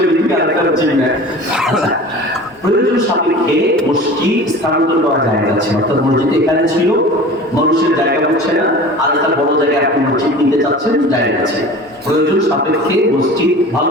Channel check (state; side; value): normal; both; correlation 0.39